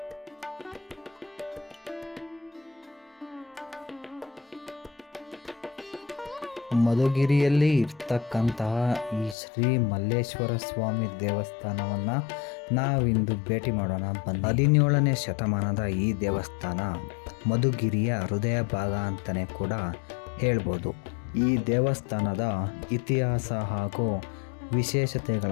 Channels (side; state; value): right; drops out; at 9.3 s